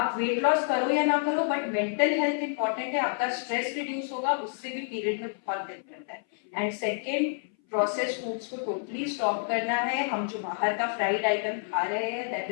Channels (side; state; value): right; silent; 58 dB below the other